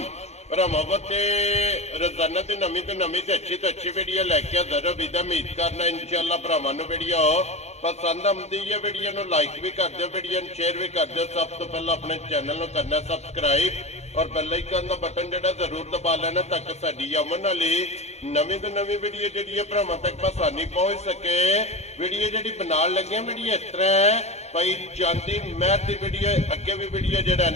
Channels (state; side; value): late; right; 0.32 ms